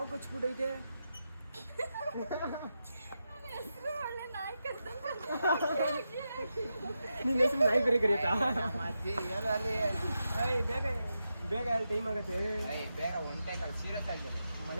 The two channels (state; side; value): inverted; both; correlation -0.88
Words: ಕಚ್ಬಿಟ್ಟೈತೆ. ನಿನ್ನ ಹೆಸರು ನಾಯಿ ಬೇರೆ ಕರೆಯುತ್ತಾ? ಬೇಗ ಬೇಗ ಅಲ್ಲಿ ಟೈಮ್ ಆಗುತ್ತೆ. ಬೇಗ ಒಂಟೆ ಸೀರಿಯಸ್ ಆಗಿದೆ.